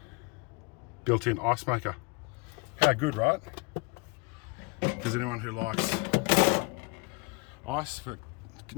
Built-in ice maker. How good, right? Because anyone who likes ice for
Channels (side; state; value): right; quieter; 29.0 dB